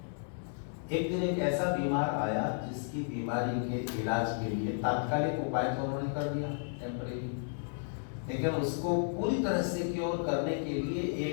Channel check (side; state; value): right; silent; digital silence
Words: एक दिन एक ऐसा बीमार आया जिसकी बीमारी के इलाज के लिए तात्कालिक उपाय तो उन्होंने कर दिया, टेम्परेरी, लेकिन उसको पूरी तरह से क्योर करने के लिए